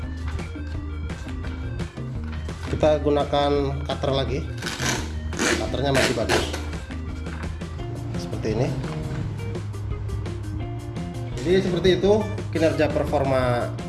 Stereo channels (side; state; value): both; identical; correlation 1.00